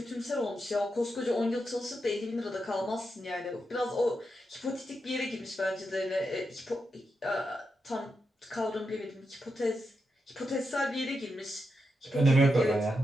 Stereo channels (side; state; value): both; normal; correlation 0.86